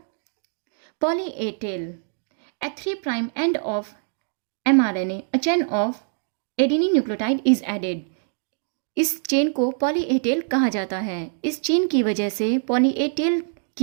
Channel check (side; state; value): left; silent; digital silence